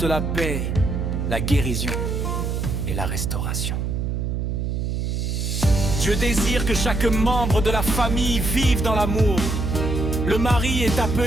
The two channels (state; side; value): noise; right; hum, 1 dB below the sound